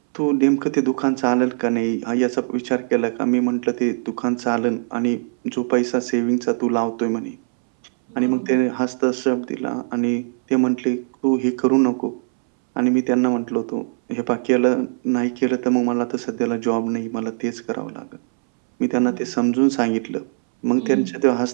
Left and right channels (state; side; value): silent; left; 65 dB below the other